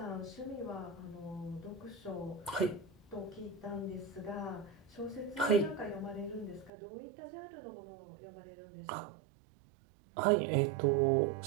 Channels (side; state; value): left; drops out; at 6.7 s